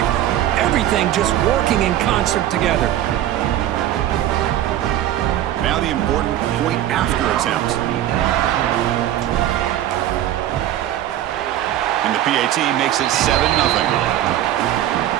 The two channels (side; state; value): left; quieter; 12.5 dB